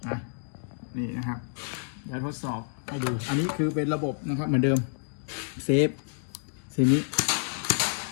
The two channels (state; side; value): silent; right; digital silence